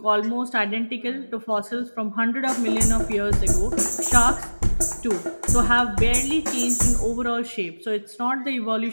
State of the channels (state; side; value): inverted; both; correlation -1.00